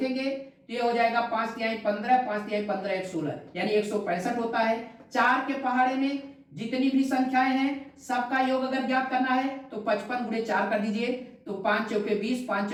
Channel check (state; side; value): identical; both; correlation 1.00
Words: तो ये हो जाएगा 5 तिहाई 15, 5 तिहाई 15 1 16, यानी 165 होता है। 4 के पहाड़े में जितनी भी संख्याएं हैं सबका योग अगर ज्ञात करना है तो 55 गुणे 4 कर दीजिए, तो 5 चौके 20, 5